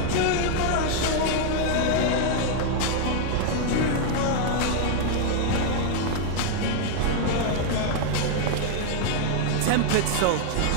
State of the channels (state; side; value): different; both; correlation 0.00